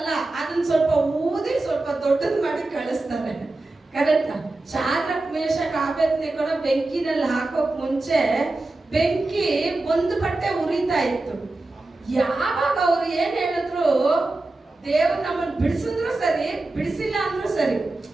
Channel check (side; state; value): left; quieter; 3.0 dB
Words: ಅದನ್ನ ಸ್ವಲ್ಪ ಊದಿ ಸ್ವಲ್ಪ ದೊಡ್ಡದ್ ಮಾಡಿ ಕಳಿಸ್ತಾರೆ. ಕರೆಕ್ಟಾ? ಶಾದ್ರಕ್ ಮೇಷಕ್ ಆಬೇದ್ನೆಗೋನ ಬೆಂಕಿನಲ್ಲಿ ಹಾಕೋಕ್ ಮುಂಚೆ ಬೆಂಕಿ ಒಂದು ಬಟ್ಟೆ ಉರಿತಾ ಇತ್ತು. ಯಾವಾಗ ಅವ್ರು ಏನ್ ಹೇಳಿದ್ರು, ದೇವ್ರು ನಮ್ಮನ್ನು ಬಿಡಿಸಿದ್ರು ಸರಿ, ಬಿಡಿಸಿಲ್ಲ ಅಂದ್ರೂ ಸರಿ.